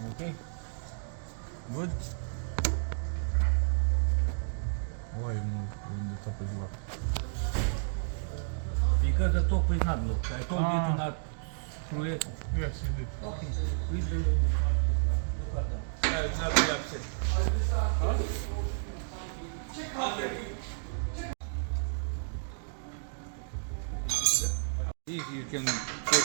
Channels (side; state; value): left; silent; digital silence